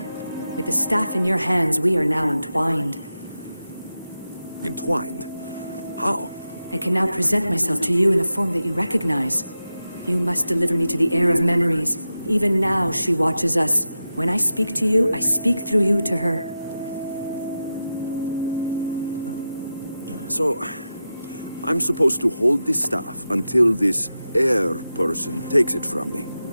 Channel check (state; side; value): inverted; both; correlation -0.91